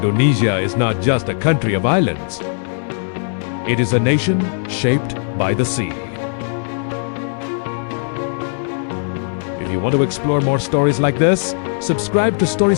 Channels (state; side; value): silent; right; 60 dB below the other